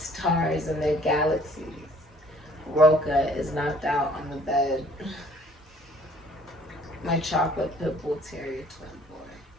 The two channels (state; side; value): normal; both; correlation 0.57